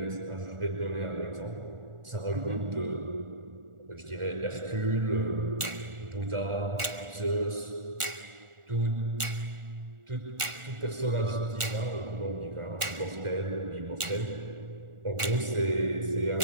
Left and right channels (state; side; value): late; left; 1.4 ms